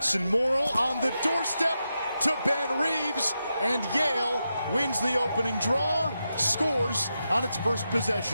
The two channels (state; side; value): inverted; both; correlation -0.88